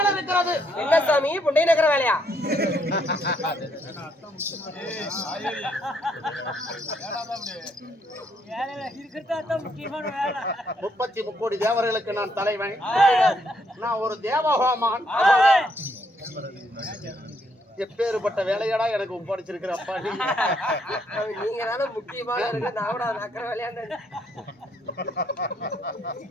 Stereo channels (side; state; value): both; normal; correlation 0.72